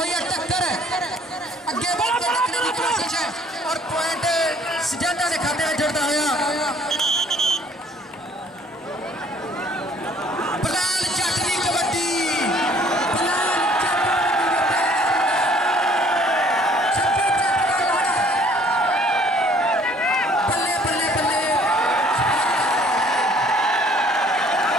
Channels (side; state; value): both; normal; correlation 0.58